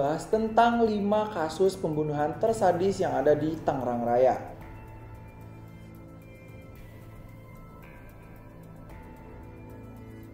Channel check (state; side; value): identical; both; correlation 1.00